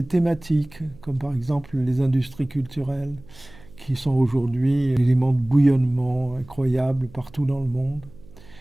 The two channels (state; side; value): noise; right; hum, 22 dB below the sound